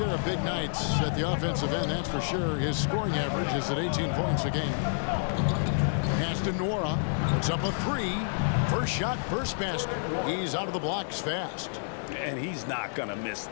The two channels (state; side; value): silent; right; digital silence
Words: of big nights at the offensive end, that's for sure. His scoring average is at 18 points a game. Pass to Nwora. Puts up a three. First shot, first basket. He's out of the blocks fast. And he's not going to miss